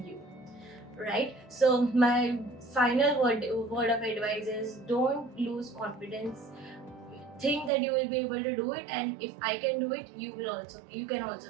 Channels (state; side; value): drops out; left; at 7.7 s